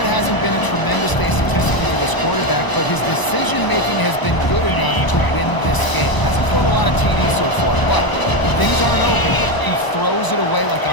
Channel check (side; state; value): right; late; 1.0 ms